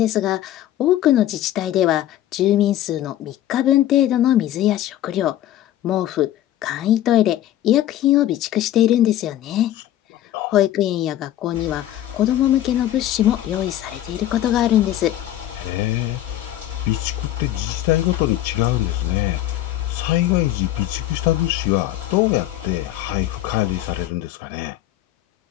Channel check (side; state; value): right; quieter; 13.2 dB